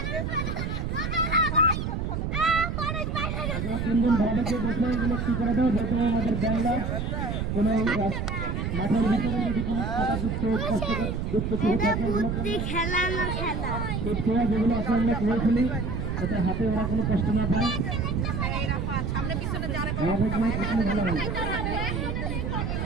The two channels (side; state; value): right; noise; rumble, 2 dB below the sound